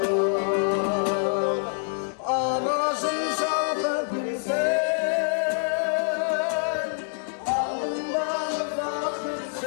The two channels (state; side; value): silent; right; digital silence